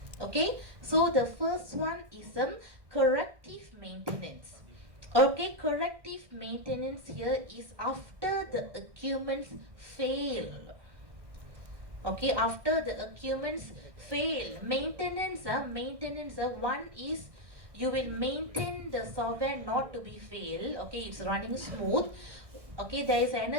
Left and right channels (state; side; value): late; left; 1.6 ms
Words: Okay, so the first one is corrective maintenance. Okay, corrective maintenance here is after the equipments fail. Okay, after the equipments fail, maintenance, one is you will maintain the software not to be fail. Okay, it's running smooth. Okay, there is